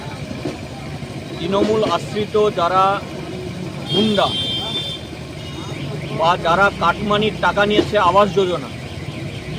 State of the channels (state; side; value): identical; both; correlation 1.00